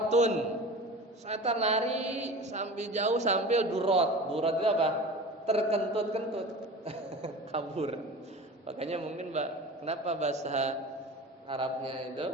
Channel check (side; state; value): both; normal; correlation 0.35